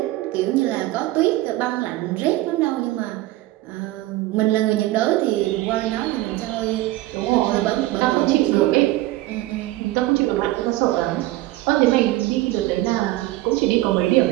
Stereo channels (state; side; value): quieter; left; 17.3 dB